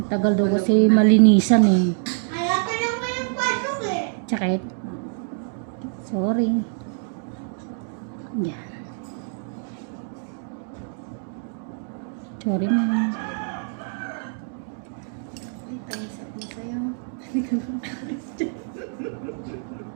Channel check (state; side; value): silent; left; 59 dB below the other